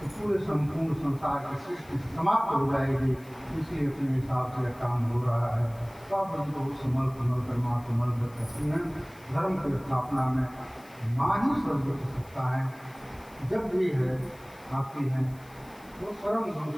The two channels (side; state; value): left; noise; hiss, 25 dB below the sound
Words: तो पूरे संपूर्ण संसार की सृष्टि समाप्त हो जाएगी। इसलिए अपने हिसाब से काम हो रहा है। तो आप हमको समल कर माँ कमल करती हैं। धर्म की स्थापना में माँ ही सर्वोच्च सत्ता है, जब भी है आती हैं वो परम गुरु